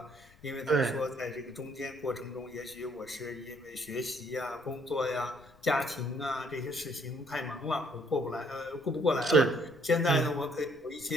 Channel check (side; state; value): left; noise; rumble, 26 dB below the sound